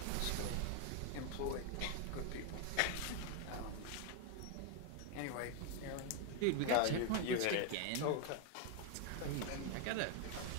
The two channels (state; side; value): different; both; correlation 0.01